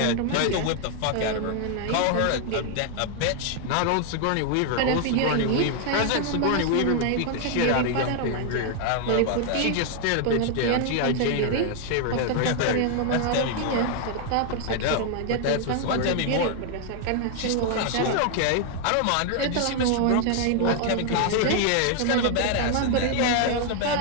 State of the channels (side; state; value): both; different; correlation 0.00